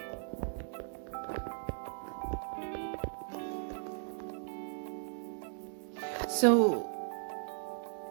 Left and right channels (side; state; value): left; silent; digital silence